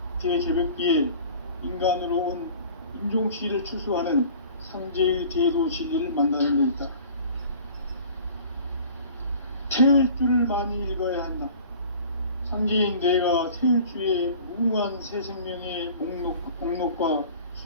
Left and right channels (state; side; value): inverted; both; correlation -0.46